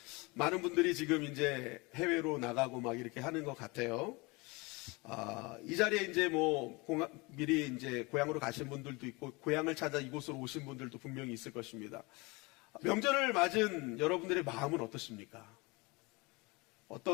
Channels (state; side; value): quieter; right; 25.9 dB